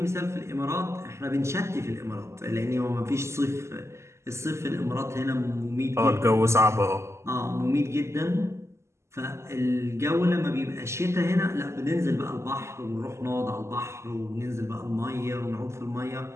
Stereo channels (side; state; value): left; late; 0.13 ms